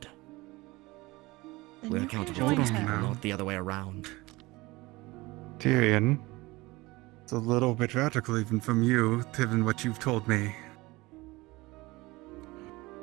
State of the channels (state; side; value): quieter; left; 21.4 dB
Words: Then We're you can accountable for join these her. people, not the other way around. Tyrion, it's a little bit radical even from you, given what you've told me.